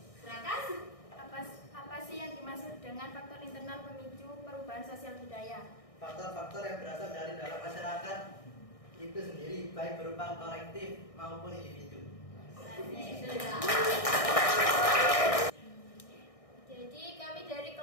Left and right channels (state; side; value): late; right; 1.6 ms